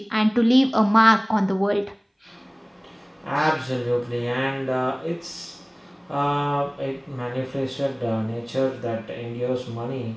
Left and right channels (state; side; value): identical; both; correlation 1.00